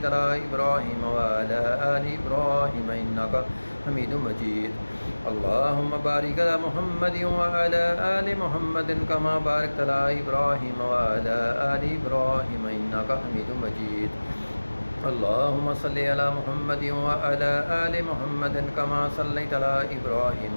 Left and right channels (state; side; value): inverted; both; correlation -1.00